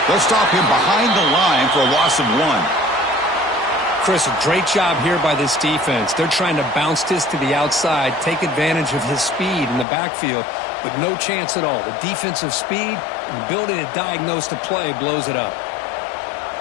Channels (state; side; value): drops out; right; at 9.9 s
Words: They'll stop him behind the line for a loss of 1. Chris, a great job here by this defense. They're trying to bounce this to the outside, take advantage of his speed in the backfield, but no chance at all. The defensive speed and ability to diagnose the play blows it up.